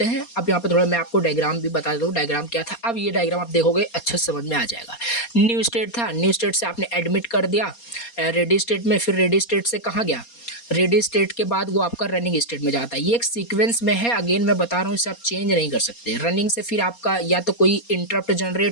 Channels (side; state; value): right; late; 4.2 ms